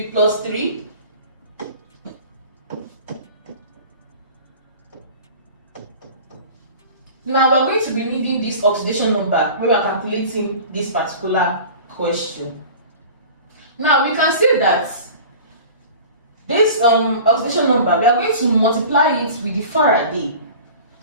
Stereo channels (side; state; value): both; inverted; correlation -0.40